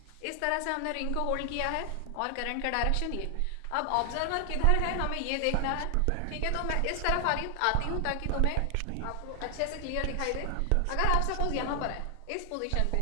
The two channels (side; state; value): both; different; correlation 0.00